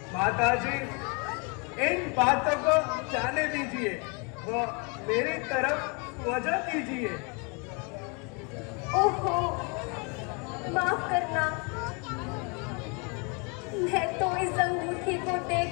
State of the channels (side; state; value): right; quieter; 33.1 dB